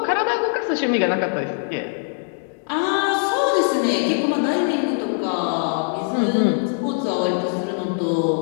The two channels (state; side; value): silent; right; 64 dB below the other